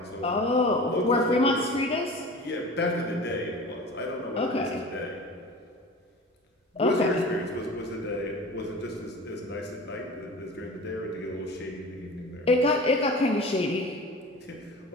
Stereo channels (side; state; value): both; normal; correlation 0.37